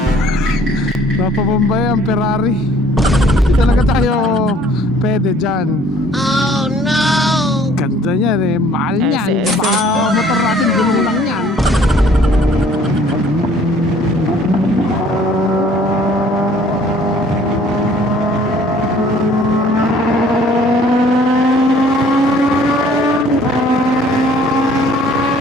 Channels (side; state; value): both; normal; correlation 0.57